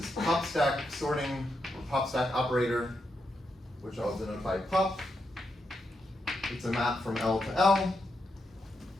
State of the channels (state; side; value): normal; both; correlation 0.83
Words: pop stack sorting, or pop stack operator, which I'll denote by pop. It's a map from L to L,